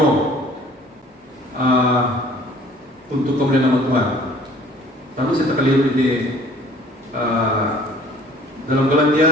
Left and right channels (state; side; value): normal; both; correlation 0.52